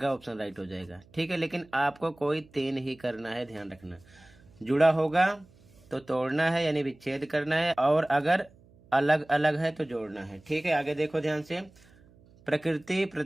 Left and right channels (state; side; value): noise; right; hum, 27 dB below the sound